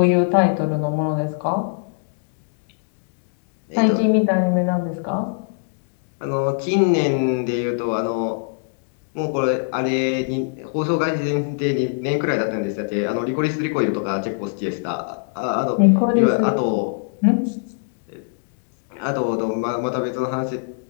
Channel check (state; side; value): silent; right; digital silence